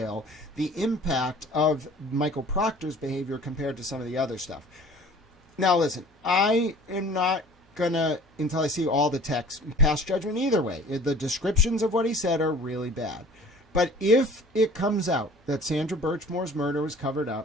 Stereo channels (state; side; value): normal; both; correlation 0.47